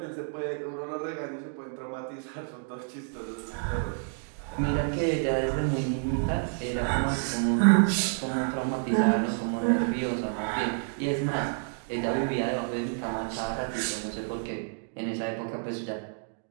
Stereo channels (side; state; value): left; silent; 58 dB below the other